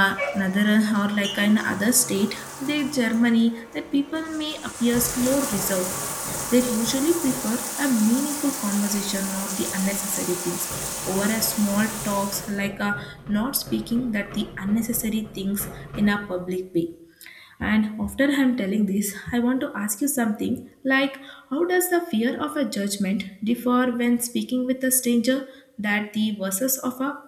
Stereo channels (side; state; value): both; identical; correlation 1.00